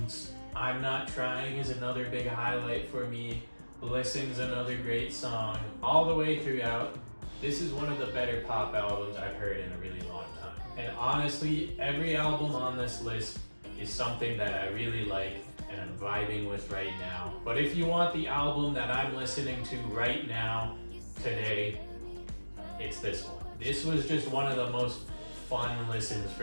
I'm Not Trying is another big highlight for me. Blessing's another great song. All the way throughout, this is one of the better pop albums I've heard in a really long time. And honestly, every album on this list is something that I really like and I'm vibing with right now. But if you want the album that I'm listening to right now, today, it's this one. This was just one of the most fun listens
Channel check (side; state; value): both; inverted; correlation -1.00